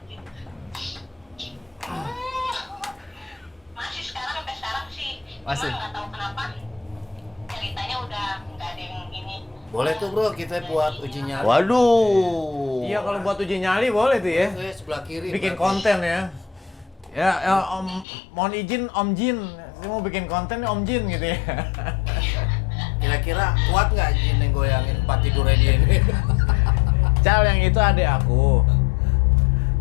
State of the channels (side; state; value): right; drops out; at 18.1 s